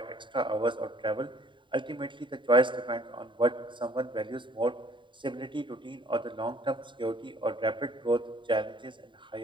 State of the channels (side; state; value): left; late; 0.23 ms